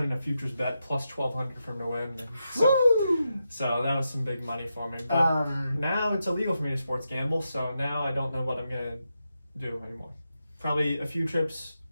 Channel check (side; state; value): both; inverted; correlation -0.87